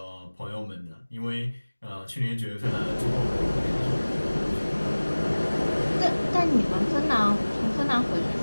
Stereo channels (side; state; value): both; inverted; correlation -1.00